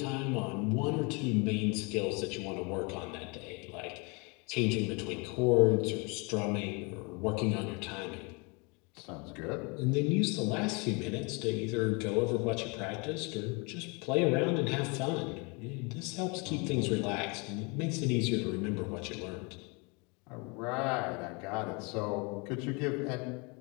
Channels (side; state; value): right; quieter; 30.3 dB